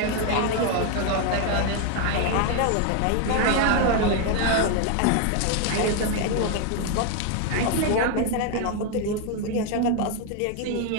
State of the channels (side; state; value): both; different; correlation 0.01